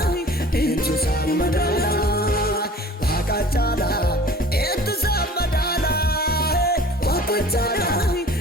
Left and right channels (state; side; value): normal; both; correlation 0.46